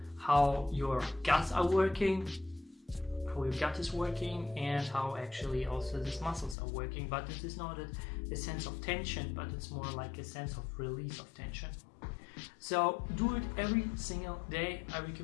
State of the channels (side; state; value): right; drops out; at 6.6 s